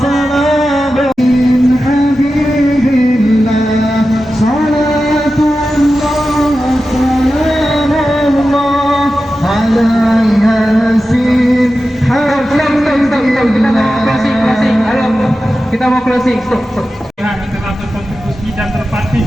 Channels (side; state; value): both; normal; correlation 0.93